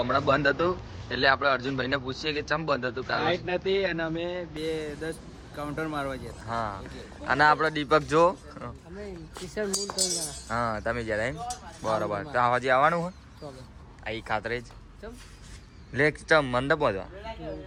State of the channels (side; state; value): both; identical; correlation 1.00